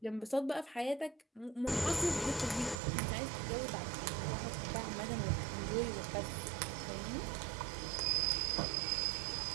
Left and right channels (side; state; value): left; drops out; at 2.8 s